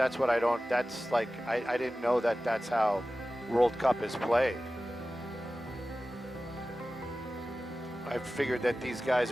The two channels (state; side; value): normal; both; correlation 0.95